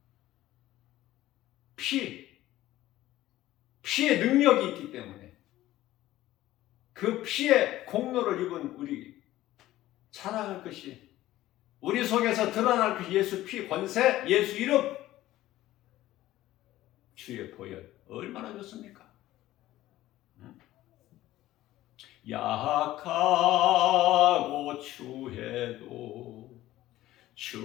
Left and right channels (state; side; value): quieter; right; 15.3 dB